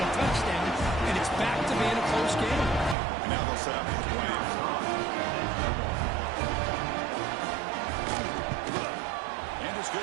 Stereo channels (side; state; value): left; drops out; at 3.0 s